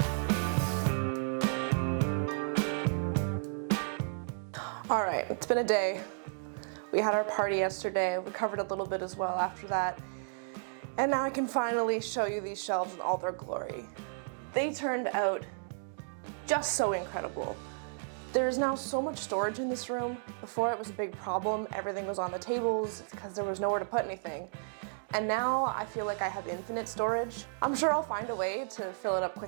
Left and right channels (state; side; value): silent; left; digital silence